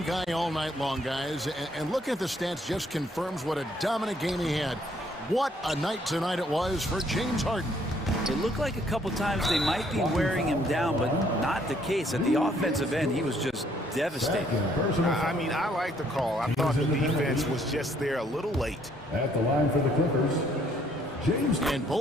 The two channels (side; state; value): both; normal; correlation 0.66